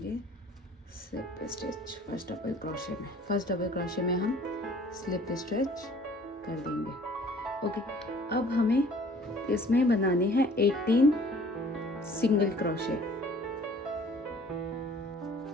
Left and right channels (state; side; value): normal; both; correlation 0.52